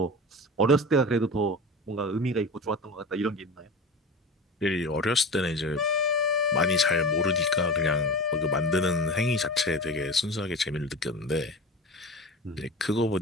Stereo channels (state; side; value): normal; both; correlation 0.31